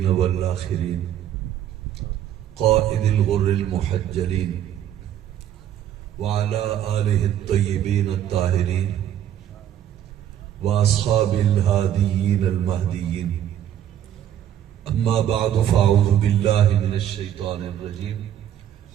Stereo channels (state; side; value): quieter; left; 10.8 dB